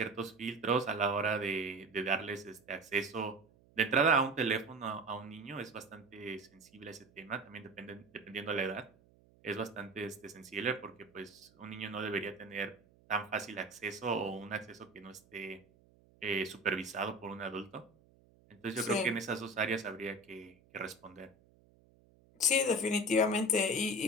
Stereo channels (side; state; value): right; noise; hum, 29 dB below the sound